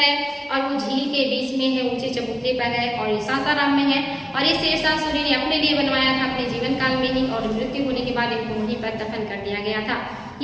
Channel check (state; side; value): identical; both; correlation 1.00